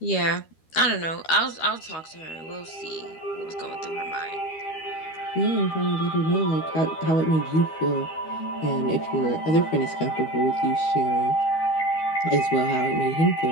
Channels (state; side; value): late; right; 13 ms